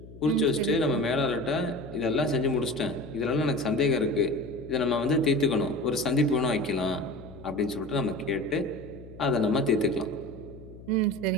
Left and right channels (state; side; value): noise; left; hum, 17 dB below the sound